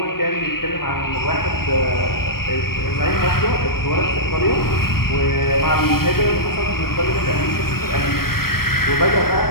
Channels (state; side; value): late; right; 0.94 ms